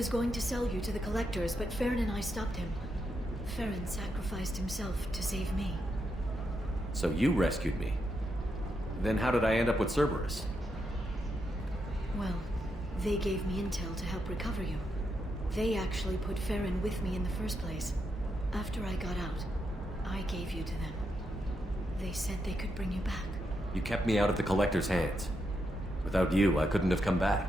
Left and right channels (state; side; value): normal; both; correlation 0.83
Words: going to sell you to the collectors, but Farron and I stopped him. Farron sacrificed himself to save me. So you rescued me. Then how did I end up with Cerberus? Well, they gave me intel to help recover you. They actually put Farron with me in the first place. After I got out, I gave you to them. They said they could bring you back. You kept me out of the Collector's hands. Without you, I couldn't have come